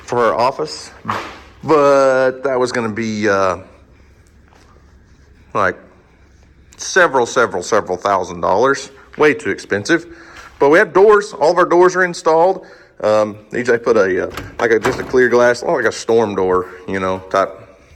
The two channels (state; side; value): identical; both; correlation 1.00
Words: her office, but that was going to be like several $1,000s, way too expensive. But we have doors. All of our doors are installed. DJ put just a clear glass, like a storm door, you know, type